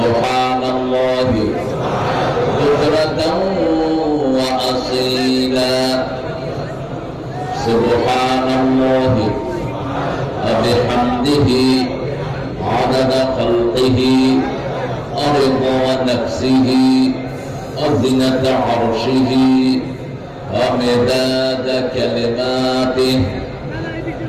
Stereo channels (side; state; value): both; identical; correlation 1.00